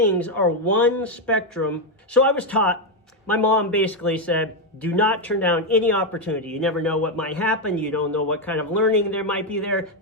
are one spectrum. So I was taught, my mom basically said, do not turn down any opportunity. You never know what might happen. You don't know what kind of learning there might be there,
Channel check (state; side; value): normal; both; correlation 0.04